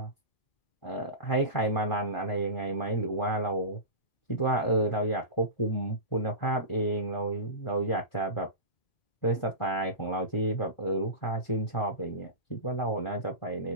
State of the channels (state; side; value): late; right; 1.5 ms